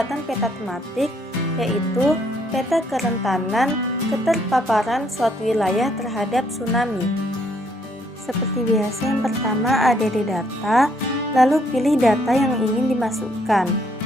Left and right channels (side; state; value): both; normal; correlation 0.69